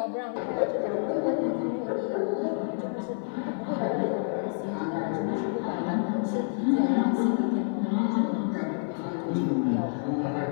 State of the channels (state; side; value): silent; right; digital silence